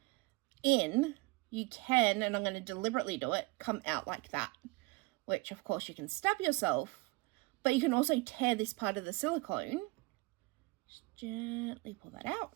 in, you can, and I'm going to deliberately do it, come out like that, which of course you can stab yourself, but you can also tear this part of the silicone. Just gently pull that out.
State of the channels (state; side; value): quieter; left; 24.9 dB